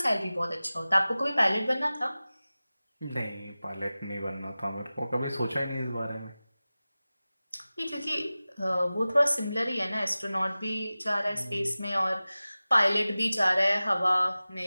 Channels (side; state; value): both; inverted; correlation -0.97